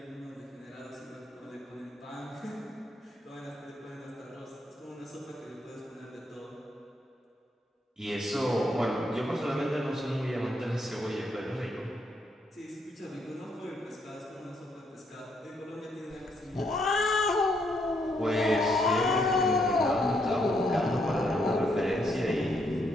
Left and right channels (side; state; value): both; normal; correlation 0.75